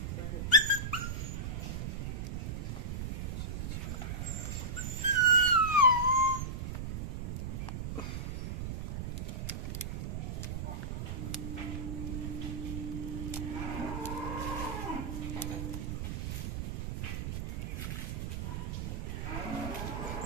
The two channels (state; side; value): noise; right; rumble, 3 dB below the sound